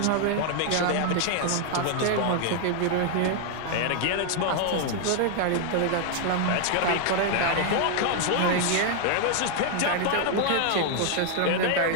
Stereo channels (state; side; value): different; both; correlation 0.00